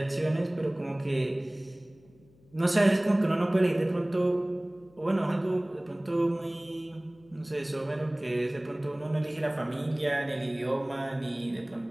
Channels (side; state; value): left; noise; hum, 28 dB below the sound